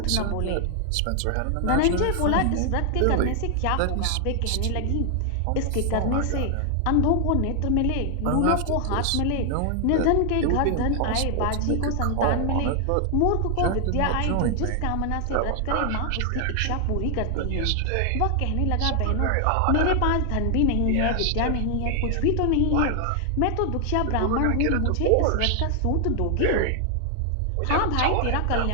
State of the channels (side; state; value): both; different; correlation 0.00